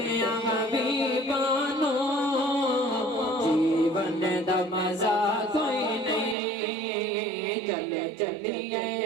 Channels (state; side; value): drops out; left; at 6.4 s